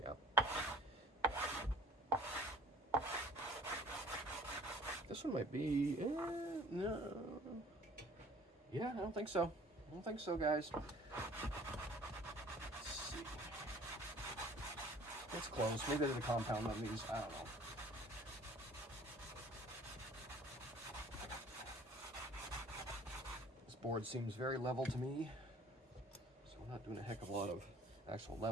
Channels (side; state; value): both; normal; correlation 0.51